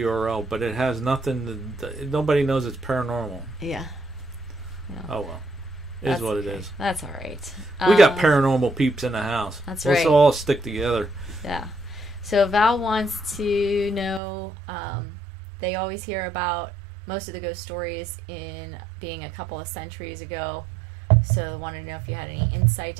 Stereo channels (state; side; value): drops out; left; at 14.2 s